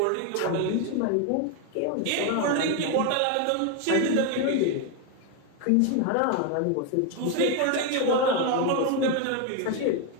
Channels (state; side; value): different; both; correlation 0.01